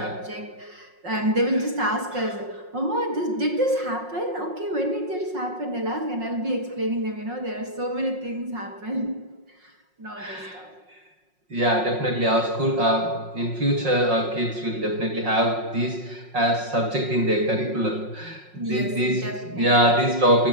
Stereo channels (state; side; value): late; left; 5.5 ms